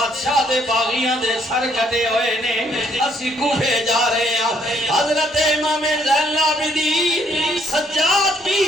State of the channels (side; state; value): both; normal; correlation 0.68